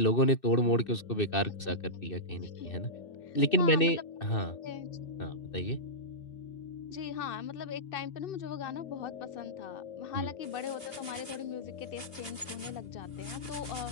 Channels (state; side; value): late; right; 2.5 ms